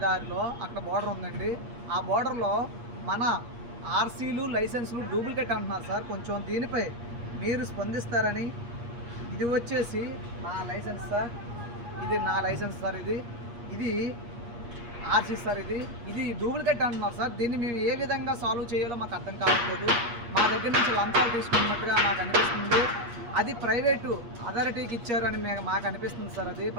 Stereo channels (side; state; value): left; late; 8.4 ms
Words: దారిలో అక్కడ బోర్డర్ ఉందండి. ఆ బోర్డర్లో మన ఆర్సీలు లైసెన్సులు డూప్లికేట్ అంటున్నారు సార్. కొంచెం దీనిపై మీరు స్పందిస్తారని. ఇది వచ్చేసి నా లైసెన్స్ సార్, ఇది నా లైసెన్స్ సార్, ఇది ఆర్సీ సార్, ఇది డూప్లికేట్ అంటున్నారు సార్. దీన్ని మేము ఏ విధంగా సాల్వ్ చేయాలో మాకు అర్థం కావట్లేదు. మా దగ్గర నుంచి లంచాలు తీసుకున్నట్టుగా నాకు అనిపిస్తుంది. అది ప్రైవేటు అథారిటీకి ఇచ్చారు అని మాకు అనిపిస్తుంది సార్. అది